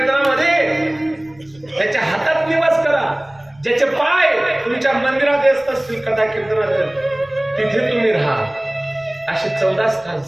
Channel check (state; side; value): noise; left; rumble, 29 dB below the sound